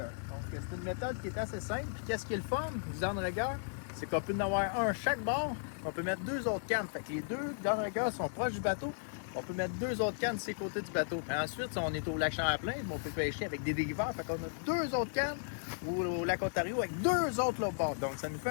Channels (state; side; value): silent; right; 54 dB below the other